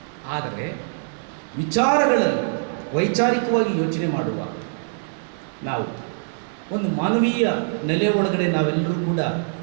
ಆದರೆ ವಿಚಾರಗಳಲ್ಲಿ ವೈಚಾರಿಕವಾಗಿ ಯೋಚನೆ ಮಾಡುವಾಗ ನಾವು ಒಂದು ಮಾನವೀಯ ನೆಲೆ ಒಳಗಡೆ ನಾವೆಲ್ಲರೂ ಕೂಡ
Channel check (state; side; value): silent; left; 63 dB below the other